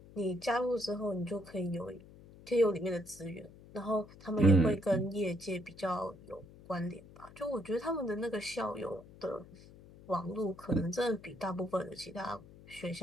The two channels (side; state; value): left; noise; hum, 20 dB below the sound